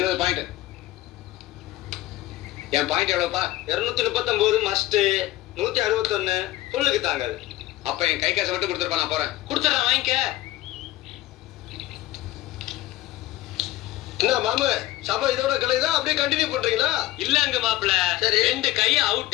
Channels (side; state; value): right; quieter; 16.5 dB